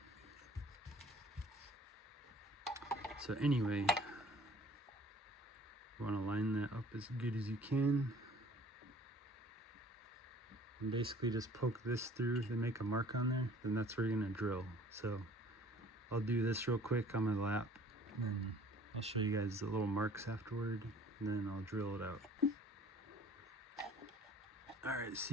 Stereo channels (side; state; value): both; normal; correlation 0.51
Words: So anyway, you want to line that up as good as you can. And basically just poke this through, then make a mark on there, then that's where you're going to drill. So I'll do this real quick on my lap, and then I'll show you guys the little marks afterward, and then I'll drill it out. Alright,